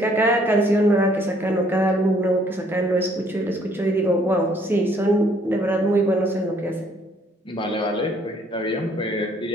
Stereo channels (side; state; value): both; normal; correlation 0.63